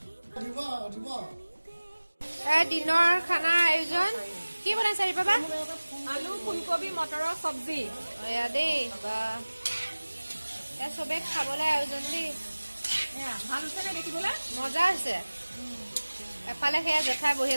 দিনৰ খানাৰ আয়োজন কি বনাইছে বাবা আলু ফুলকবি মটৰৰ চব্জি এয়া দেই বা চবে খাবলৈ আয়োজন দেই ভাল হৈছে নে দেখিবলৈ মজা হৈছে এফালে সেয়া জেঠাই বহি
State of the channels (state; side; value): inverted; both; correlation -1.00